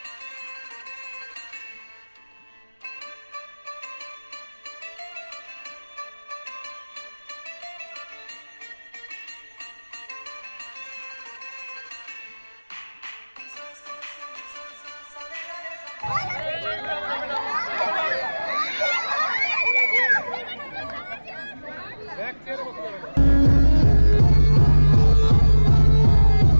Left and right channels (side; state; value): both; inverted; correlation -1.00